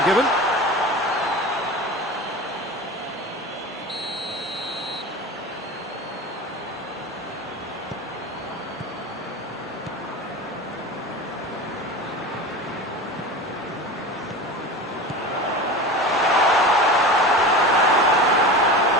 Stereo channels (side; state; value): both; normal; correlation 0.30